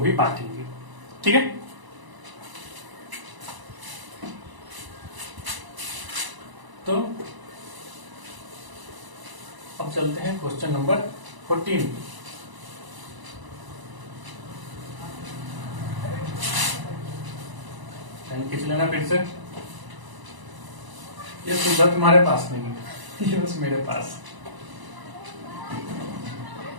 बांटेंगे। ठीक है, तो अब चलते हैं क्वेश्चन नंबर 14। खींच लेना फिर से, ये सुविधा तुम्हारे पास नहीं है, ये बस मेरे पास।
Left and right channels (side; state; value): left; late; 1.0 ms